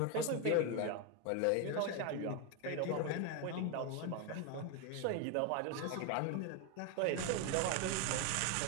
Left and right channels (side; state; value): both; different; correlation 0.01